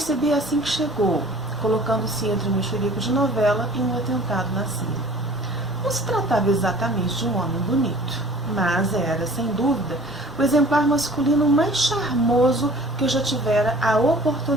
assim que chegou, colocando-se entre um mexerico de novela e um atentado na Síria. Não se tratava exatamente de um homem bonito, mas era, sem dúvida, o exemplar masculino mais charmoso que eu já tivera a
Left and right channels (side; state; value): both; normal; correlation 0.48